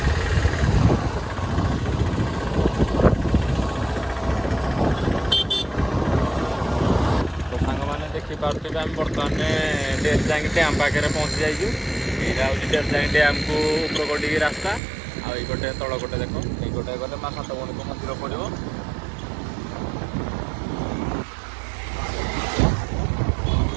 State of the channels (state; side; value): drops out; left; at 14.8 s